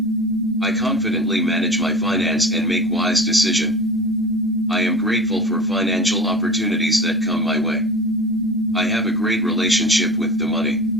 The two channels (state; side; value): normal; both; correlation 0.35